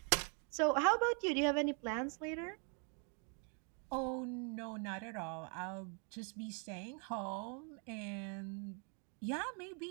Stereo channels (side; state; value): left; quieter; 38.8 dB